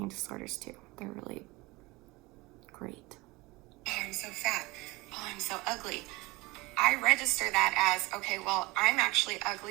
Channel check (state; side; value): quieter; left; 21.5 dB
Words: disorders do. They're really great. Oh, I'm so fat. Oh, I'm so ugly. I register that as, okay, well, I'm actually